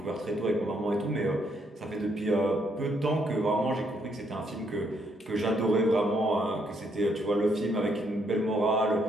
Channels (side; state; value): both; normal; correlation 0.73